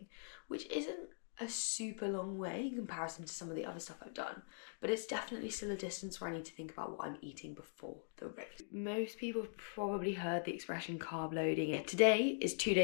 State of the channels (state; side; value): silent; right; digital silence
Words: which isn't a super long way in comparison to some of the other stuff I've done, but it's definitely still a distance where I need to think about what I'm eating before the race. Most people have probably heard the expression carb loading. Today is 2